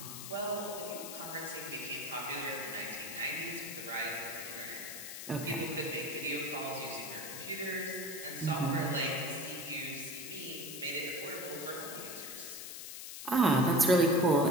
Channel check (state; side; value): noise; left; hiss, 9 dB below the sound